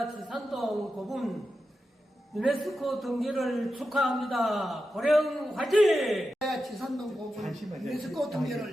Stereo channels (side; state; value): both; normal; correlation 0.90